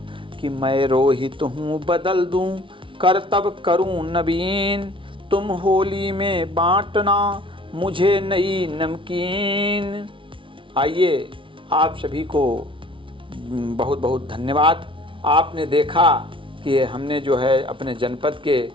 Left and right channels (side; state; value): left; late; 0.25 ms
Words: कि मैं रोहित हूँ बदल दूँ करतब करूँ नवीन, तुम होली में बांटना मुझे नई नमकीन। आइए आप सभी को बहुत बहुत धन्यवाद। आपने देखा कि हमने जो है अपने जनपद के